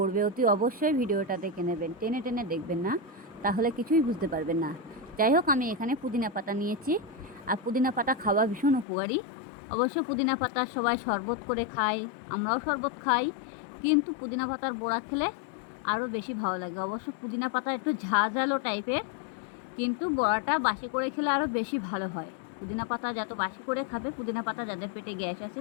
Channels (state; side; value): drops out; right; at 8.8 s